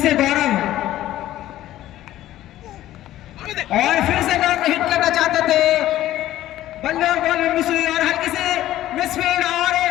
गौरव और फिर से गौरव हिट करना चाहते थे, बल्ले और बॉल में मिस हुई और हल्की से मिसफील्ड और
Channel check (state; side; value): quieter; right; 14.0 dB